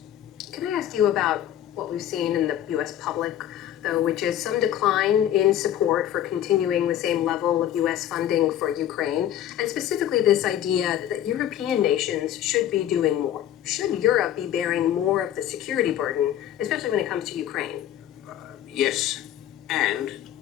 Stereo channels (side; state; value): right; quieter; 11.5 dB